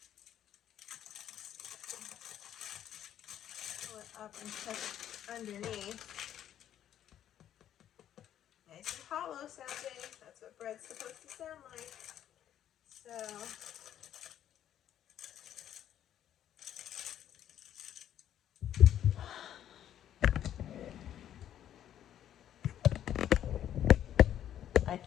Pull it up and check underneath. Nice and hollow sounding. That's what bread's supposed to sound like. So I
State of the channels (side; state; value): right; quieter; 10.8 dB